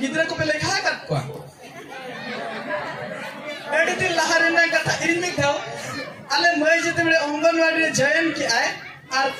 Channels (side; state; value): both; identical; correlation 1.00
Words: गिद्रा को पे लेखा कर को एडी दिन लहारे ना कथा इन में था अले मई जते बड़े अंगनवाड़ी रे जयन की आए और